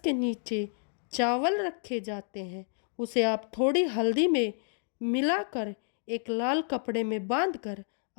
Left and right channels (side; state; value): right; silent; digital silence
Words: के नीचे चावल रखे जाते हैं उसे आप थोड़ी हल्दी में मिलाकर एक लाल कपड़े में बांधकर